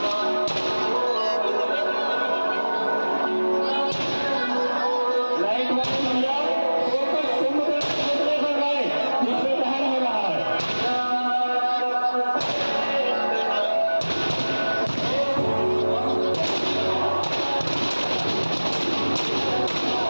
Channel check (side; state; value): both; inverted; correlation -1.00